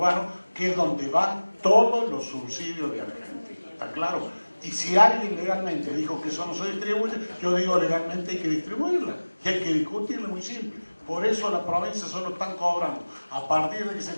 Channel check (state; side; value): inverted; both; correlation -1.00